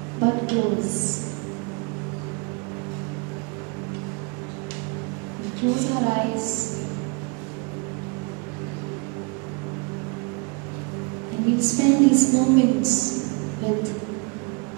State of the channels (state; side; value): quieter; left; 31.6 dB